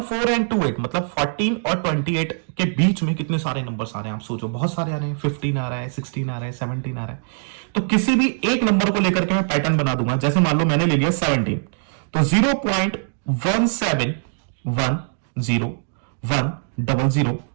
एंड 28 मतलब 14 और 28 के बीच में कितने सारे नंबर्स आ रहे हैं, आप सोचो, बहुत सारे आ रहे हैं। 15 आ रहा है, 16 आ रहा है, 17 आ रहा है। तो किसी भी एक नंबर को लेकर के मैं पैटर्न बना दूंगा। जैसे मान लो मैंने ले लिया 17, तो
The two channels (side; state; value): left; silent; digital silence